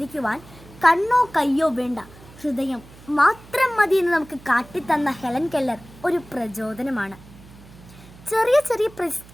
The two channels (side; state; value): right; noise; hum, 21 dB below the sound